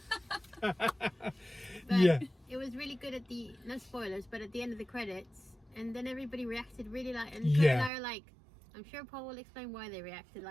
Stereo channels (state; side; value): drops out; left; at 7.9 s